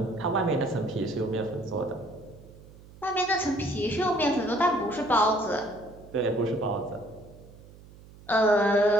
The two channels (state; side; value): noise; right; hum, 21 dB below the sound